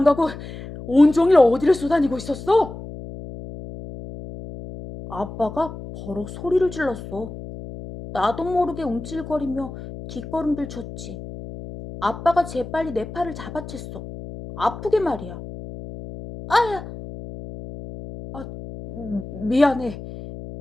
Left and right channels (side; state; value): left; noise; hum, 12 dB below the sound